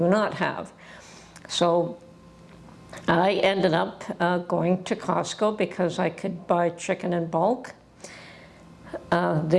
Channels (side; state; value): both; identical; correlation 1.00